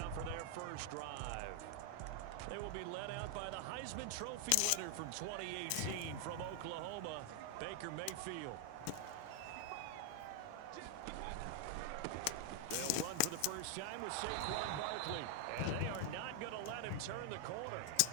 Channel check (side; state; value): both; different; correlation 0.00